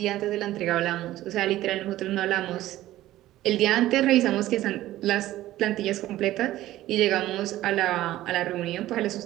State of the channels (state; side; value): quieter; left; 15.0 dB